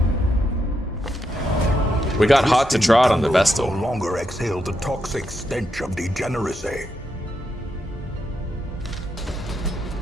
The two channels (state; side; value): normal; both; correlation 0.82